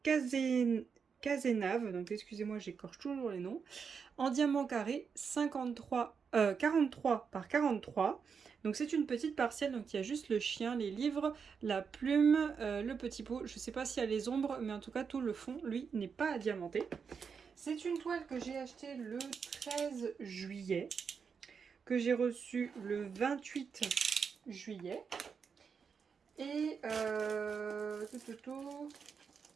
Cazenave, donc excusez-moi j'écorche toujours les noms. En diamant carré, 43 par 43. Donc c'est une petite partielle, donc il y a juste le chien, les livres, la plume, le petit pot. Je ne sais pas s'il y a les ombres, mais en tout cas tout le fond, lui, n'est pas diamanté. C'est une toile que j'ai achetée le 13 juillet, que j'ai reçue le 28 juillet. Et et c'est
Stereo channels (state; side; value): quieter; left; 6.1 dB